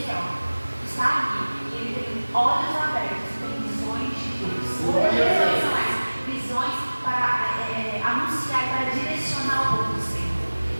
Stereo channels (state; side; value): inverted; both; correlation -1.00